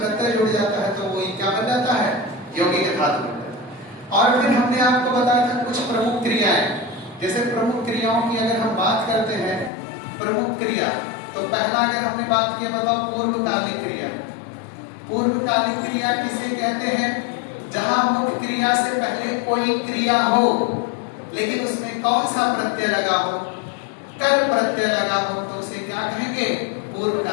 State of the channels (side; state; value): right; drops out; at 9.7 s